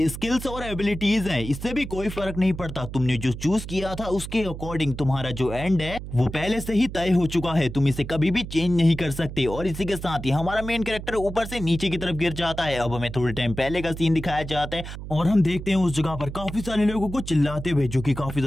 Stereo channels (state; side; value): noise; right; hum, 10 dB below the sound